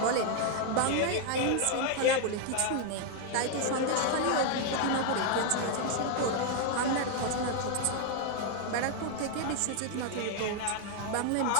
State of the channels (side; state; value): both; different; correlation 0.00